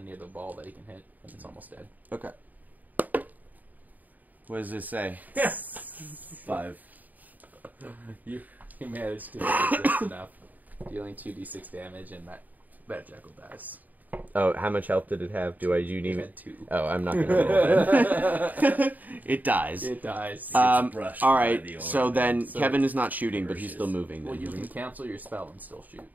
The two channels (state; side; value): late; left; 0.082 ms